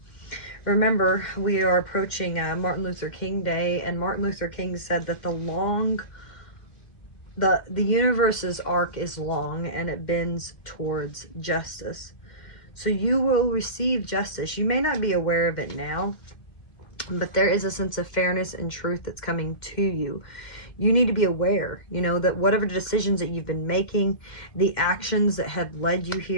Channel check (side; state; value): right; late; 2.1 ms